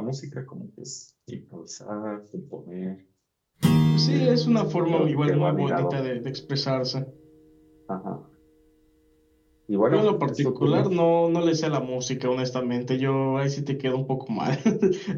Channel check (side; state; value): both; identical; correlation 1.00